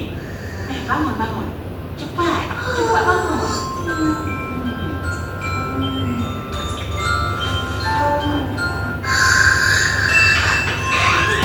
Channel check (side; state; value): both; identical; correlation 1.00